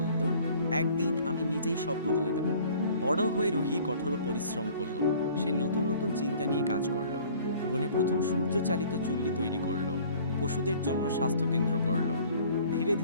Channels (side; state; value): both; inverted; correlation -0.52